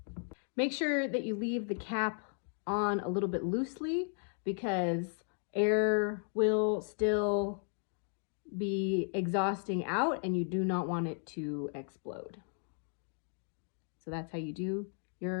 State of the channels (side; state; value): right; silent; 54 dB below the other